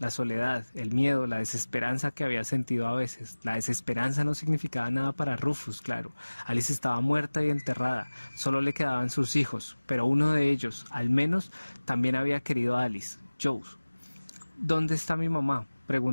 soledad, el miedo, la desesperanza que había sentido a veces. La desesperanza no significaba nada para Rufus, claro. Alice estaba muerta y enterrada, solo le quedaban sus hijos, pero uno de ellos, al menos, también había querido a Alice, Joe. ¿Dónde está mi mamá?,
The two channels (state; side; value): inverted; both; correlation -1.00